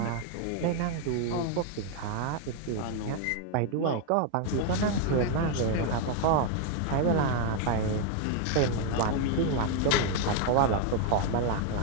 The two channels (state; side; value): different; both; correlation 0.00